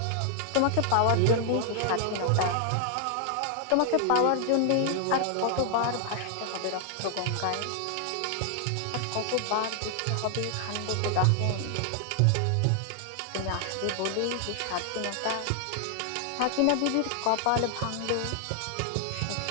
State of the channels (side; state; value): both; different; correlation 0.00